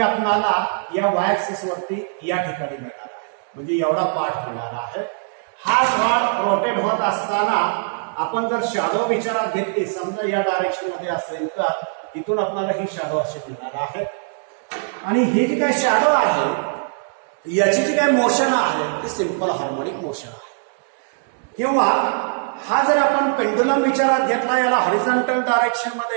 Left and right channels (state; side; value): silent; left; digital silence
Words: या वाय ऍक्सिस वरती या ठिकाणी मिळणार आहे. म्हणजे एवढा पार्ट मिळणार आहे. हा रॉड रोटेट होत असताना आपण जर शॅडो विचारात घेतली, समजा या डायरेक्शन मध्ये असेल तर इथून आपल्याला ही शॅडो अशी मिळणार आहे. आणि ही जी काही शॅडो आहे याची जी काही मोशन आहे ती सिंपल हार्मोनिक मोशन आहे. किंवा हा जर आपण पेंडुलम विचारात घेतला, याला हॉरिझॉन्टल डायरेक्शन